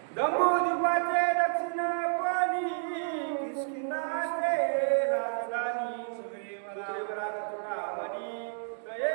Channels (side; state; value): left; silent; digital silence